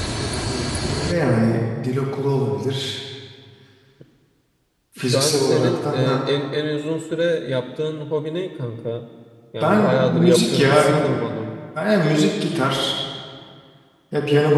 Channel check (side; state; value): both; identical; correlation 1.00